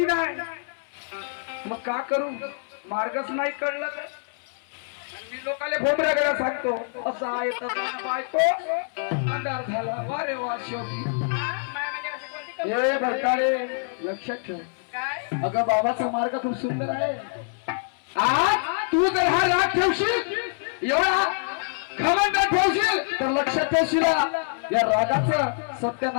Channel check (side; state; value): right; silent; 61 dB below the other